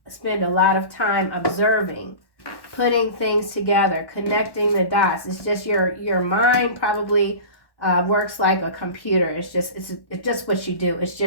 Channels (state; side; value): late; right; 1.1 ms